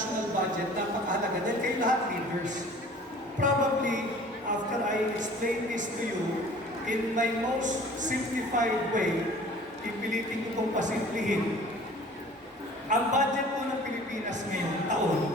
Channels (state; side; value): normal; both; correlation 0.48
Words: budget, napakahalaga dahil kayo lahat leaders. Probably, after I explain this to you, in my most simplified way, ipilitin ko pong pasimplihin. Ang budget po ng Pilipinas ngayong